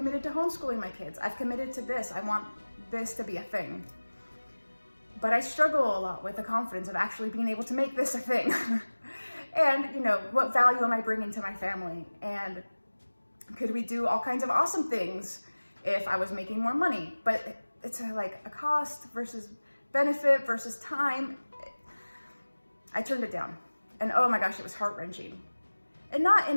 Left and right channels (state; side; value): inverted; both; correlation -1.00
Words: to homeschooling my kids. I've committed to this. I want this to be a thing. But I struggle a lot with the confidence of actually being able to make this a thing. And, you know, what value am I bringing to my family? And could we do all kinds of awesome things if I was making more money? But it's like a cost versus benefit versus time. I turned it down. And oh my gosh, it was heart-wrenching. And not